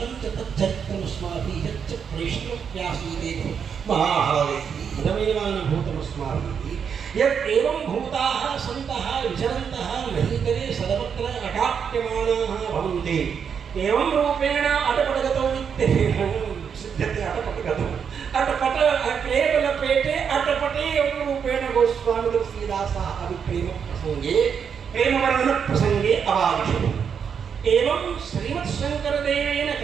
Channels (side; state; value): left; quieter; 7.1 dB